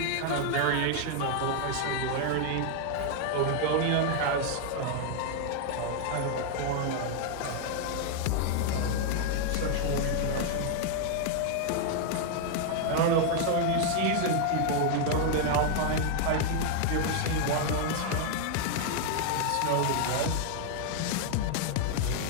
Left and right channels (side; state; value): both; different; correlation 0.00